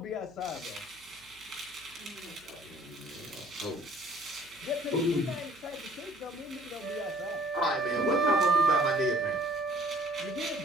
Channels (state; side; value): noise; right; hum, 29 dB below the sound